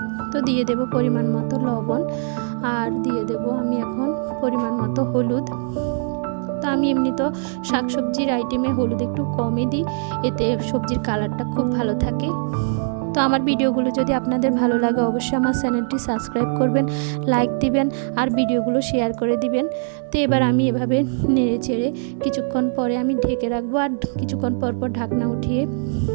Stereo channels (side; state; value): left; silent; digital silence